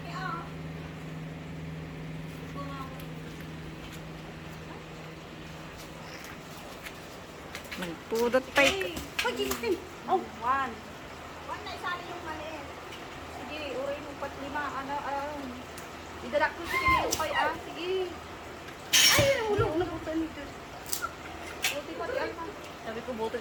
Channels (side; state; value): both; identical; correlation 1.00